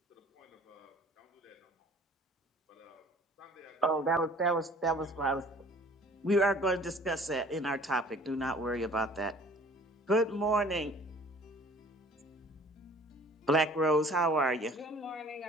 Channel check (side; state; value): both; normal; correlation 0.51